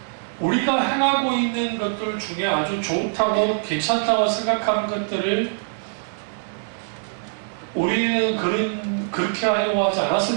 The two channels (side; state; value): left; silent; 63 dB below the other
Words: 우리가 행하고 있는 것들 중에 아주 좋다고 괜찮다고 생각하는 것들을 우리는 그렇게 하려고 하지